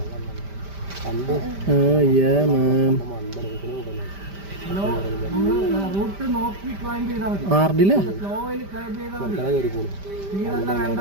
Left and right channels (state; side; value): late; left; 5.1 ms